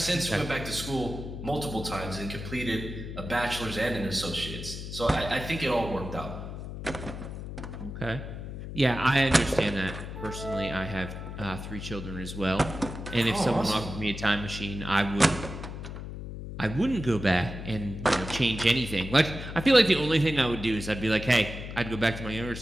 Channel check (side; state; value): left; noise; hum, 8 dB below the sound